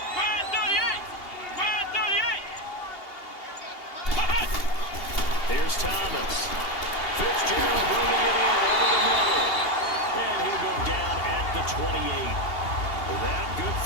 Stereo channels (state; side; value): late; right; 2.8 ms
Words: Ryan 38! Ryan 38! Here's Thomas. Fitzgerald bringing it in over the middle. And he'll go down at the 28. That good